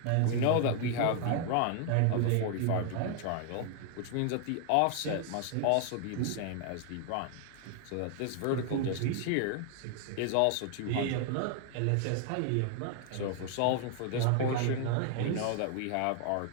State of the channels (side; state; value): both; different; correlation 0.00